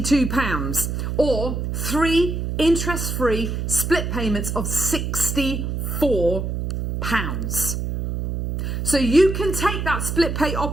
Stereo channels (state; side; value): noise; right; hum, 3 dB below the sound